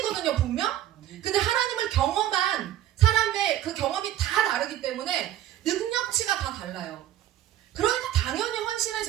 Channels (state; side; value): quieter; left; 12.4 dB